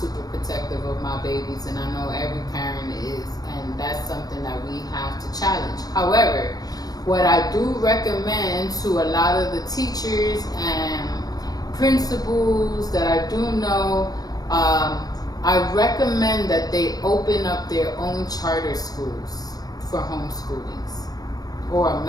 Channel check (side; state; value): right; late; 0.19 ms